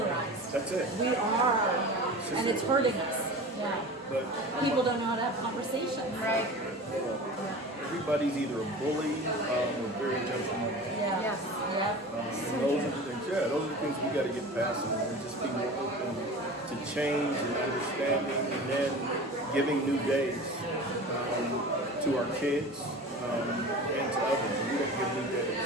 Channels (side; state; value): both; normal; correlation 0.35